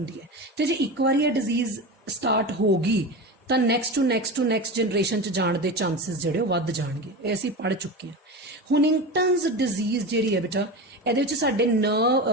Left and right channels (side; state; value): both; normal; correlation 0.25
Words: ਹੈ, ਤੇ ਜੇ ਇੱਕ ਵਾਰੀ ਇਹ ਡਿਜ਼ੀਜ਼ ਸਟਾਰਟ ਹੋ ਗਈ ਤਾਂ ਨੈਕਸਟ ਟੂ ਨੈਕਸਟ ਜਨਰੇਸ਼ਨ ਚ ਜਾਣ ਦੇ ਚਾਂਸਸ ਜਿਹੜੇ ਉਹ ਵੱਧ ਜਾਣਗੇ। ਇਹ ਅਸੀਂ ਪੜ੍ਹ ਚੁੱਕੇ ਹਾਂ। ਹੁਨਿੰਗਟਨਸ ਡਿਜ਼ੀਜ਼ ਜਿਹੜੀ ਹੈ ਬੇਟਾ, ਇਹਦੇ ਵਿੱਚ ਸਾਡੇ